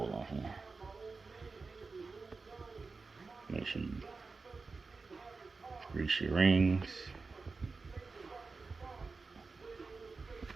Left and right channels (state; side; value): quieter; left; 4.2 dB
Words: on here. Make sure you grease your rings.